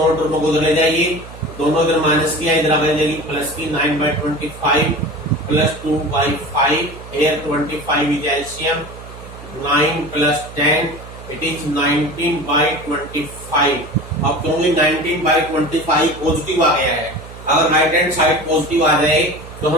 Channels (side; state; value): right; noise; hum, 16 dB below the sound